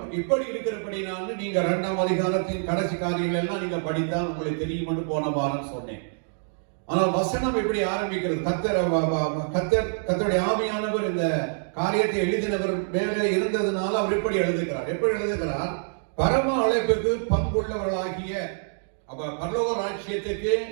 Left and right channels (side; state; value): left; silent; digital silence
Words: இப்படி இருக்கிறபடினால நீங்க 2ஆம் அதிகாரத்தின் கடைசி காரியங்கள் எல்லாம் நீங்க படித்தால் உங்களுக்கு தெரியும் போன வாரம் சொன்னேன். ஆனால் வசனம் எப்படி ஆரம்பிக்கிறது? கர்த்தருடைய ஆவியானவர் இந்த காரியத்தை எழுதினவர் மேலே இருந்ததுனால அவர் எப்படி எழுதுகிறார்? எப்படி எழுதுகிறார்? பரம அழைப்புக்கு பங்குள்ளவர்களாகிய அப்ப பரலோக ராஜ்யத்துக்கு